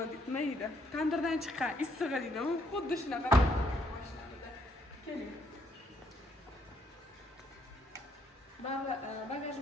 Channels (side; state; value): both; normal; correlation 0.71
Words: nima deydi? Tandirdan chiqqan issig'i deydi. Xuddi shunaqa mashinamizda. Keling.